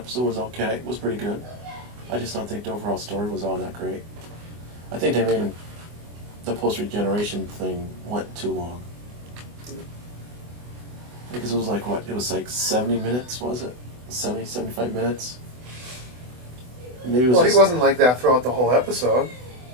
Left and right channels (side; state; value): left; late; 24 ms